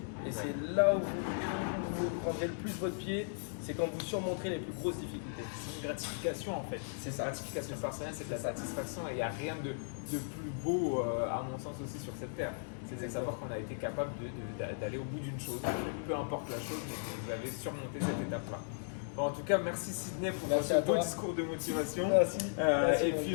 Et c'est là où vous prendrez le plus votre pied, c'est quand vous surmonterez les plus grosses difficultés. C'est une gratification en fait. C'est ça. La gratification personnelle, c'est de la satisfaction et il n'y a rien de plus beau, à mon sens aussi, sur cette terre. C'est de savoir qu'on a été capable d'aller au bout d'une chose, peu importe la chose, mais que vous avez surmonté cette étape-là. Bon, en tout cas, merci Sydney pour ce beau discours de motivation. Merci. Et puis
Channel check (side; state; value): right; silent; digital silence